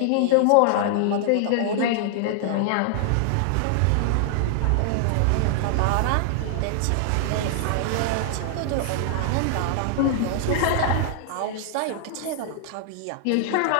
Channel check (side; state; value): both; different; correlation -0.01